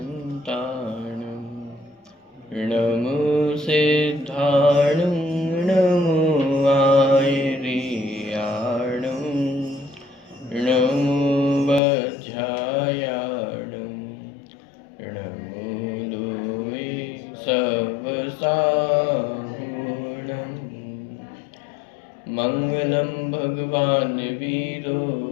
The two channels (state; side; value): drops out; right; at 11.8 s